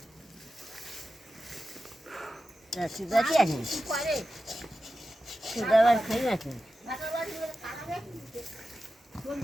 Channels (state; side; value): normal; both; correlation 0.92